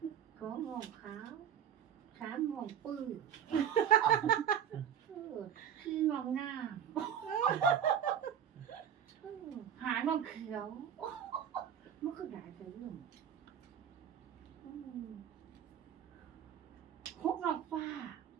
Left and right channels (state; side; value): quieter; left; 9.0 dB